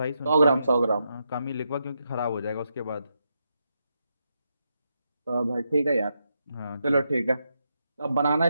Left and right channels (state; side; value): inverted; both; correlation -0.83